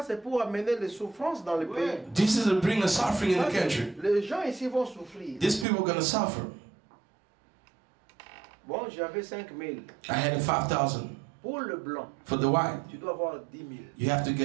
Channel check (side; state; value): left; drops out; at 5.7 s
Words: c'est pour amener les souffrances dans le pays. This is to bring a suffering in Ça, the country. les gens ici vont souffrir. These people are going to suffer. Bon, j'avais 5 000. I had a 5,000 Pour le blanc, for the white. tu dois avoir 10 000. You have to